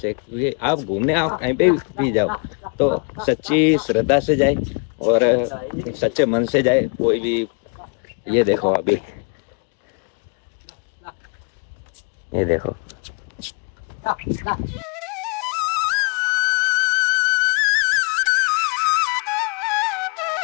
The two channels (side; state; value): right; quieter; 35.6 dB